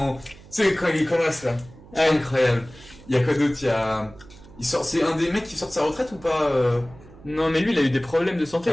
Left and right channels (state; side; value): noise; right; hum, 21 dB below the sound